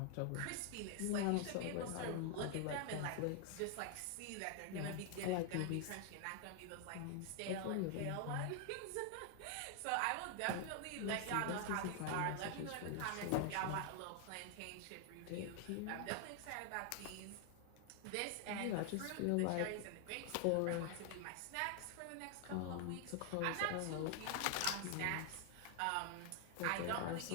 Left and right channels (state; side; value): different; both; correlation 0.00